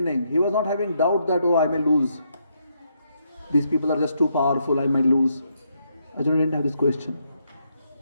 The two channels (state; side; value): inverted; both; correlation -0.77